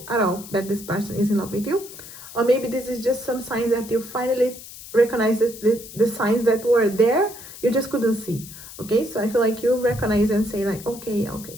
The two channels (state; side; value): noise; left; hiss, 15 dB below the sound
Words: at all that this person is in love with you, or maybe this is just some signs that you finally recognize the signs that were there, you just couldn't see. Okay, so I feel like you recognize and say like, okay,